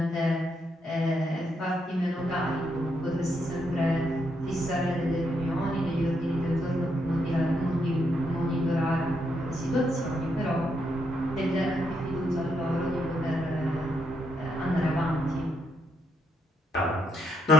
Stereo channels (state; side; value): normal; both; correlation 0.77